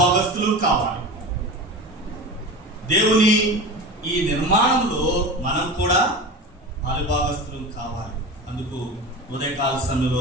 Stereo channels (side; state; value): both; normal; correlation 0.29